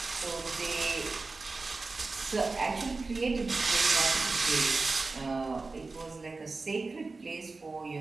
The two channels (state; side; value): quieter; left; 3.8 dB